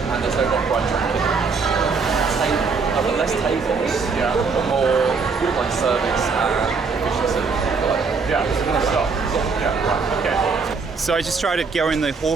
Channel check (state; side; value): quieter; left; 4.8 dB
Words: and there's no copyright tracking. I've got less tables, but more like service and efficiency. Yeah, more stuff. Yeah, right, okay. So I just tried to go in the